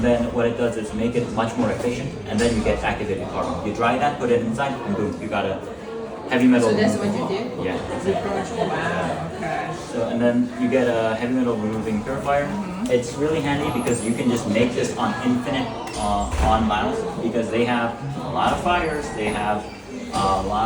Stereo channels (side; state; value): both; identical; correlation 1.00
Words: then what it does is make it much more efficient, and then you get activated carbon. You dry that, put it inside, and boom, you got a heavy metal. So that's what you did? Yeah. Wow, okay. So and then you get a heavy metal removing purifier. It's really handy because you can just make this on infinite on Laos because they have a lot of fires, they have a